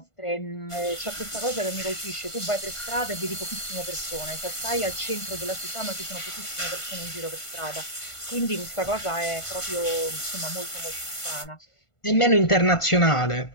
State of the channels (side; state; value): right; late; 1.5 ms